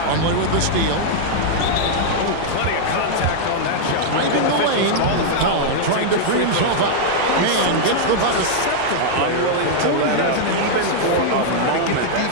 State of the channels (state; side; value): different; both; correlation -0.01